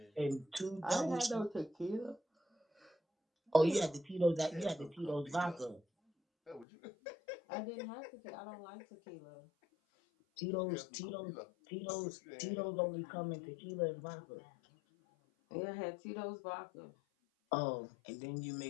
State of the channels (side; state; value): right; drops out; at 6.7 s